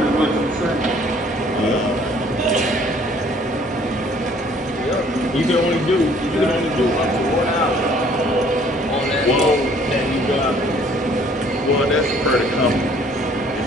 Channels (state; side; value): normal; both; correlation 0.58